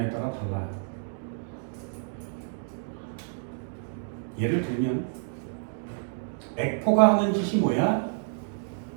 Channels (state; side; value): silent; left; digital silence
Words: 따라 달라요. 예를 들면 액포가 하는 짓이 뭐야?